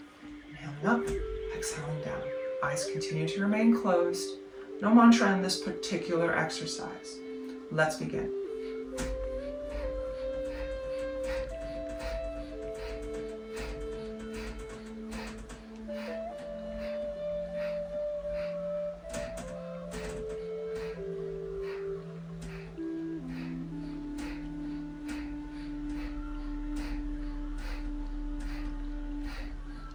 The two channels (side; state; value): both; identical; correlation 1.00